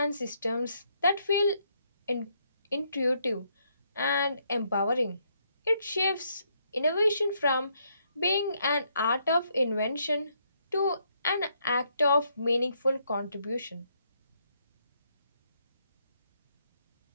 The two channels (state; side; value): inverted; both; correlation -0.73